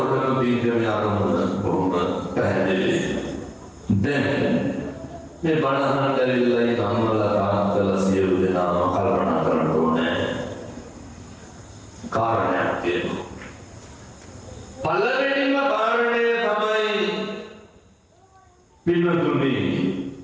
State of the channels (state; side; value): identical; both; correlation 1.00